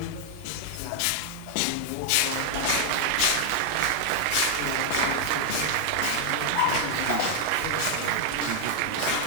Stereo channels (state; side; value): different; both; correlation 0.00